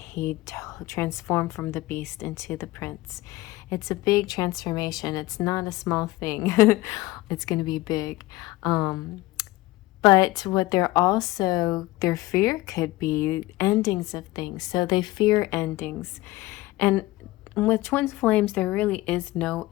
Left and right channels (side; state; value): right; quieter; 19.1 dB